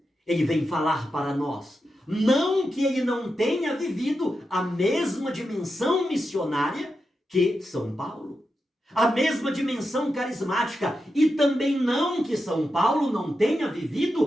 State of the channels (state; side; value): normal; both; correlation 0.88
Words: ele vem falar para nós, não que ele não tenha vivido a mesma dimensão missionária que São Paulo, a mesma dimensão carismática, e também não que São Paulo não tenha